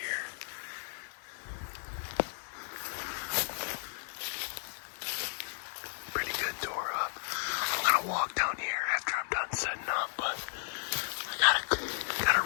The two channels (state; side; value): silent; right; 55 dB below the other